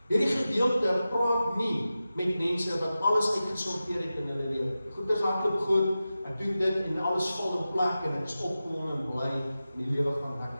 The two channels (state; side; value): inverted; both; correlation -0.94